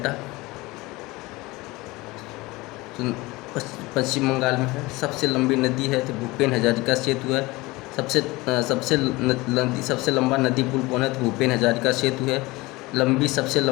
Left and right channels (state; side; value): quieter; right; 21.7 dB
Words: पश्चिम बंगाल में है। सबसे लंबी नदी है तो भूपेन हजारिका सेतु है। सबसे लंबा नदी पुल कौन है? तो भूपेन हजारिका सेतु है। सबसे